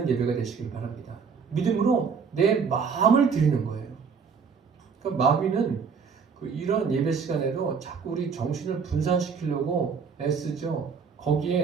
예배가 되시길 바랍니다. 믿음으로 내 마음을 드리는 거예요. 그러니까 마귀는 이런 예배 시간에도 자꾸 우리 정신을 분산시키려고 애쓰죠.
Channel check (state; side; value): quieter; left; 5.9 dB